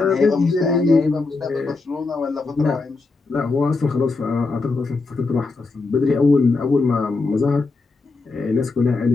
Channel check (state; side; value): quieter; right; 3.8 dB